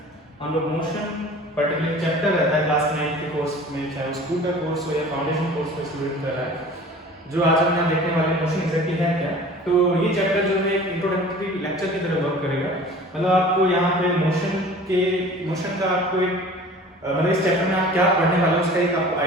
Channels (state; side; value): normal; both; correlation 0.44